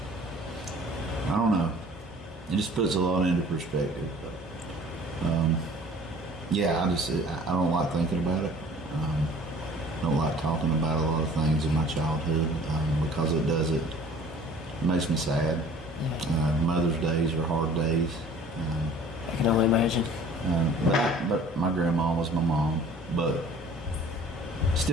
I don't know. It just puts a lot into perspective. But yeah, I don't like thinking about it. I don't like talking about a lot of things in my childhood because it makes me sad. Yeah. Mother's days are hard days. I can only imagine. But my grandma was my mom, but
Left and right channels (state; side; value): normal; both; correlation 0.49